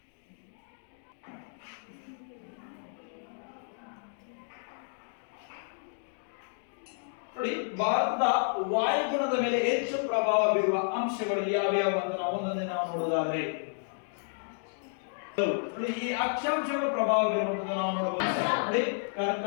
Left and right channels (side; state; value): right; silent; digital silence